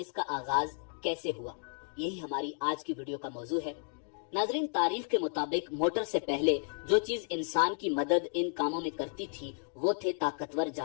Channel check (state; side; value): silent; right; 56 dB below the other